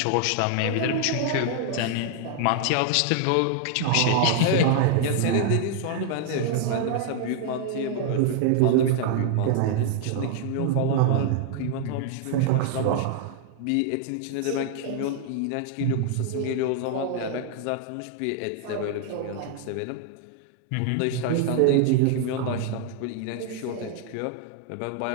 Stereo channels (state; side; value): different; both; correlation 0.00